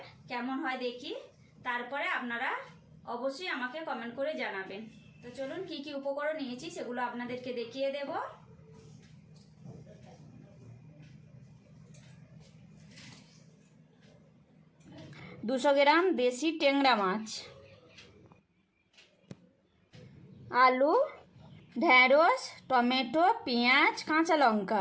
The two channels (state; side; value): identical; both; correlation 1.00